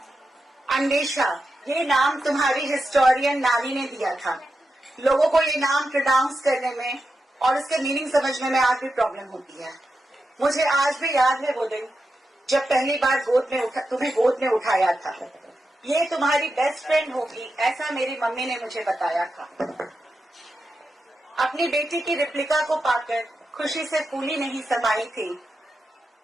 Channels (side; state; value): both; normal; correlation 0.89